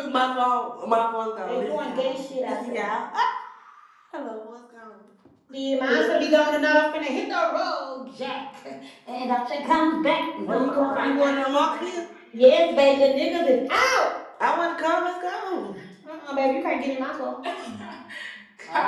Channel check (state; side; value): identical; both; correlation 1.00